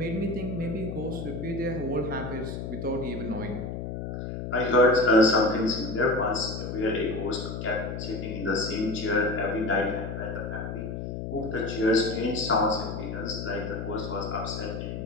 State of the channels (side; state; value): left; noise; hum, 5 dB below the sound